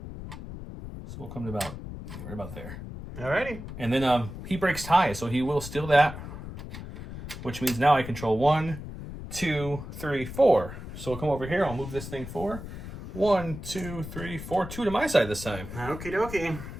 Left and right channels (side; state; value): left; noise; rumble, 10 dB below the sound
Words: So we'll come to right about there. Alrighty. And then he breaks tie, so he will steal that, which means now I control 1, 2, 3, 4. So we'll come over here. I'll move this thing 4. 1, 2, 3, 4. 2 to my side this time. Okie dokie.